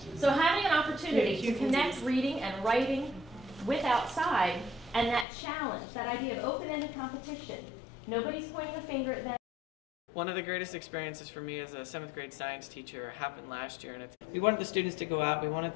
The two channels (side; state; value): right; drops out; at 5.2 s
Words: So having an opportunity to connect reading and writing with outside, and that challenge, that idea of open-ended competition. Nobody's pointing a finger at them. One of the greatest experiences for me as a 7th grade science teacher happened last year, and we wanted the students to go out, we wanted